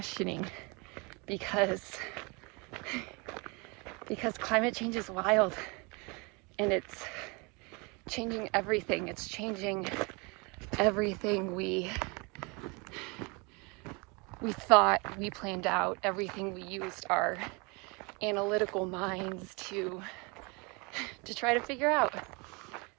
because climate change is wild, and it's changing everything. It's changing everything we thought we planned out, everything we used our analytical minds to try to figure out.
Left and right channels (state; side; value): quieter; left; 29.4 dB